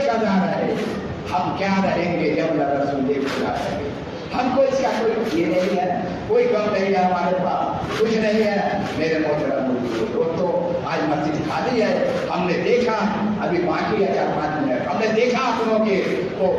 قضا رہے. ہم کیا رہیں گے جب رسول خدا رہیں گے؟ ہم کو اس کا کوئی یہ نہیں ہے، کوئی غم نہیں ہے ہمارے پاس، کچھ نہیں ہے. میرے محترم دوستو، آج مسجد خالی ہے. ہم نے دیکھا، ابھی باقی ہے 4-5 منٹ. ہم نے دیکھا آپ لوگوں کے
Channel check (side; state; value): both; identical; correlation 1.00